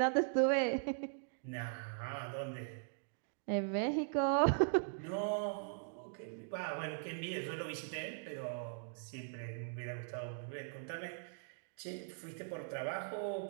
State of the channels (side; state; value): left; silent; digital silence